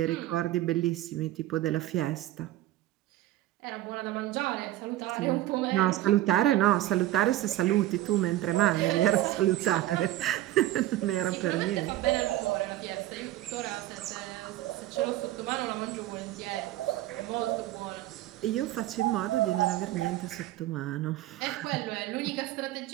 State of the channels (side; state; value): left; quieter; 14.9 dB